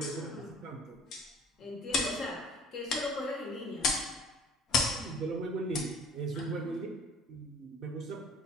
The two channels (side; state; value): both; normal; correlation 0.50